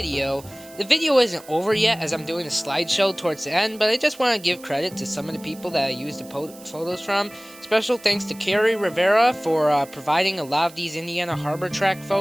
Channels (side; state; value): right; noise; hiss, 21 dB below the sound